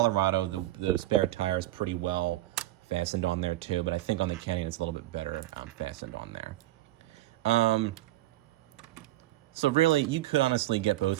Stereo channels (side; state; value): left; quieter; 15.8 dB